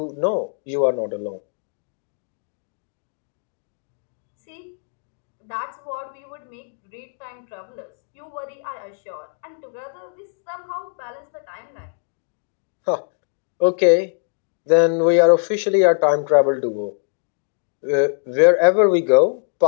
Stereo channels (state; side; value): silent; right; 63 dB below the other